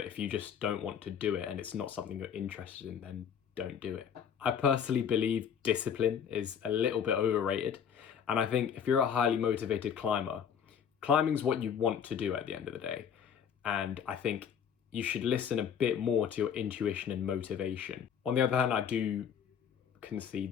if you just don't want to do it and it's not something you're interested in, then don't do it. I personally believe discipline is a little bit overrated, and I think if you're a highly motivated climber, climbing's what you want to do at the end of the day, and I think you should listen a bit more to your intuition and motivation. On the other hand, I do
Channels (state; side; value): quieter; right; 7.9 dB